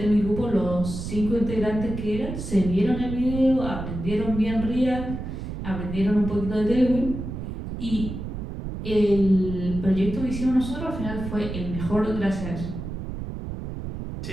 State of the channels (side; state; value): right; noise; rumble, 7 dB below the sound